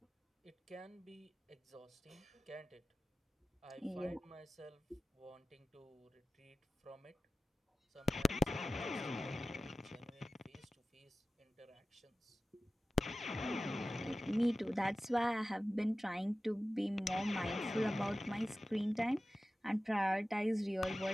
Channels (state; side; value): normal; both; correlation 0.95